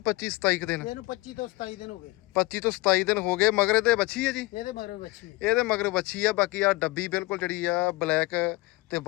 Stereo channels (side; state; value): right; quieter; 21.4 dB